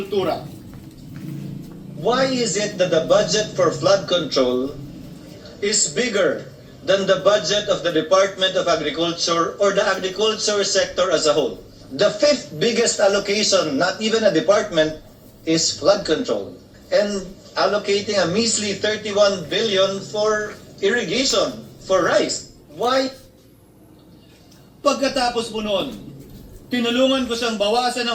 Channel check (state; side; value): identical; both; correlation 1.00